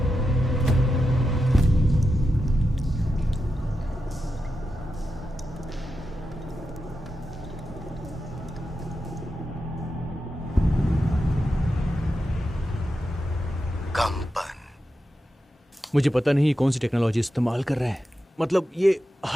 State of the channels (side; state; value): both; normal; correlation 0.89